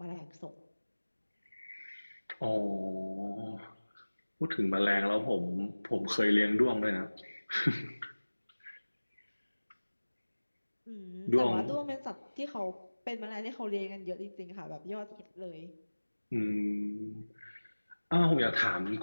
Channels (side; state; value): both; inverted; correlation -1.00